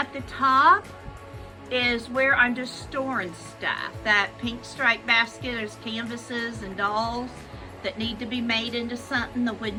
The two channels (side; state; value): both; identical; correlation 1.00